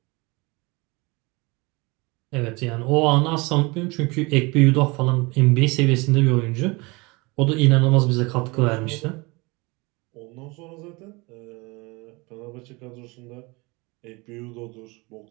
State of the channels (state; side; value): quieter; left; 25.9 dB